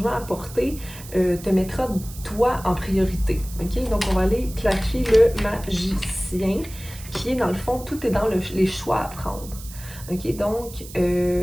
apporté, te mettra toi en priorité. OK? Donc, on va aller clarifier le magicien, qui est dans le fond, tout est dans les choix à prendre. OK? Donc,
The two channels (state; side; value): noise; right; hiss, 16 dB below the sound